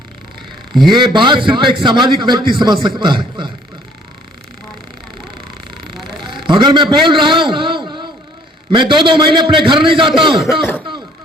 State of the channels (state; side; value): normal; both; correlation 0.59